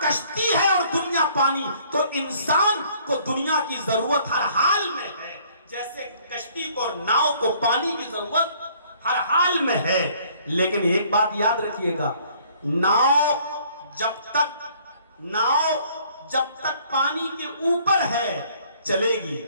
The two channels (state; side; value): inverted; both; correlation -0.60